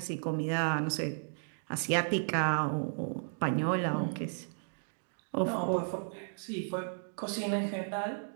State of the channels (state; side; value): silent; left; digital silence